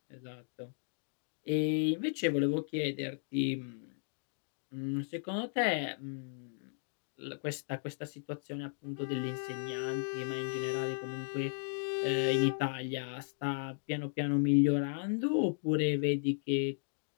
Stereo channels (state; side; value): silent; right; digital silence